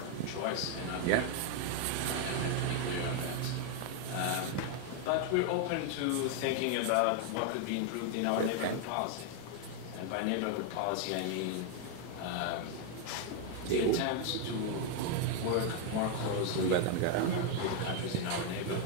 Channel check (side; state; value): both; different; correlation 0.01